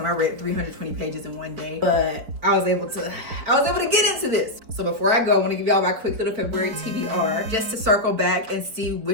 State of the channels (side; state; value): left; late; 4.6 ms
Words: I read 320 pages in one day, but I was able to get into this. So before I go, I want to give y'all my quick little February TBR just to circle back and see